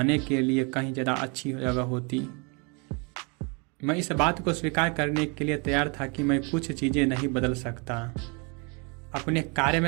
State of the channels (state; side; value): quieter; left; 32.2 dB